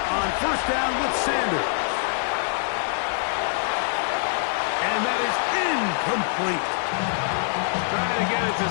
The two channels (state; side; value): silent; right; 62 dB below the other